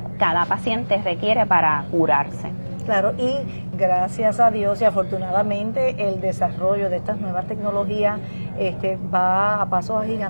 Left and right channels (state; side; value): inverted; both; correlation -1.00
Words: cada paciente requiere para curarse. Claro, y gracias a Dios y afortunadamente el desarrollo de estas nuevas tecnologías va a pasos